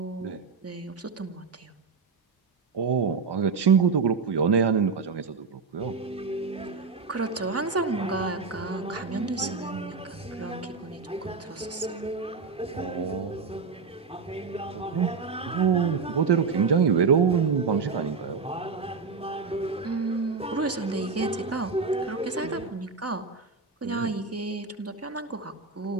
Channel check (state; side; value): quieter; left; 4.9 dB